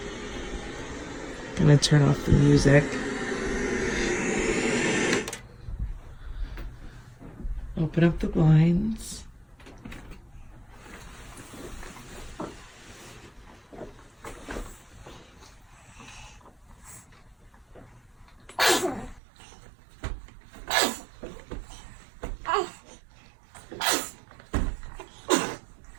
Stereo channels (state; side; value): drops out; left; at 19.2 s